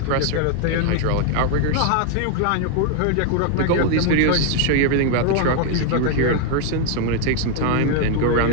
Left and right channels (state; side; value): different; both; correlation 0.00